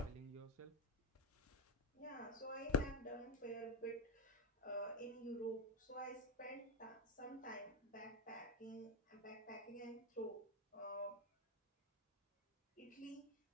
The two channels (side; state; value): both; normal; correlation 0.09